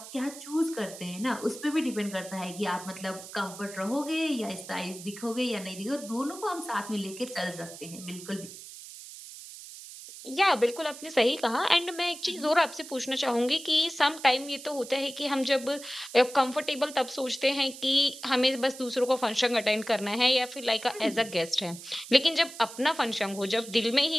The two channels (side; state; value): right; noise; hiss, 14 dB below the sound